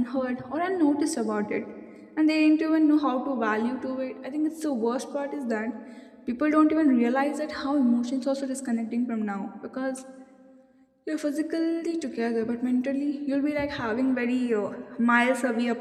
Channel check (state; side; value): identical; both; correlation 1.00